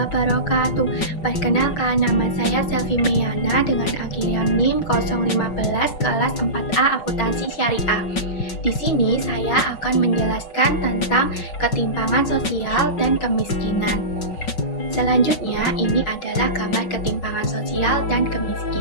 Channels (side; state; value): right; late; 5.4 ms